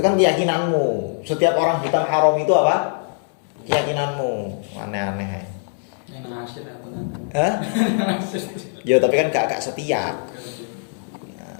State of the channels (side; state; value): right; silent; 60 dB below the other